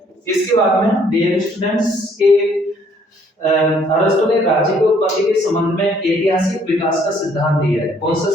इसके बाद में डियर स्टूडेंट्स के अरस्तु ने राज्य की उत्पत्ति के संबंध में ऐतिहासिक विकास का सिद्धांत दिया है। कौन सा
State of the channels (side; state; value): both; normal; correlation 0.63